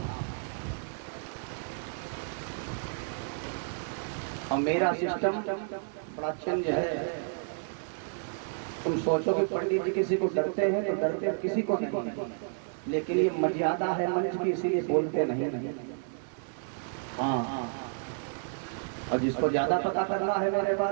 और मेरा सिस्टम बड़ा चेंज है। तुम सोचो कि पंडित जी किसी को डरते हैं तो डरते किसी को नहीं, लेकिन ये मर्यादा है मंच की, इसीलिए बोलते नहीं। हाँ, और जिसको ज्यादा पता करना है मेरे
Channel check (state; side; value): silent; left; 57 dB below the other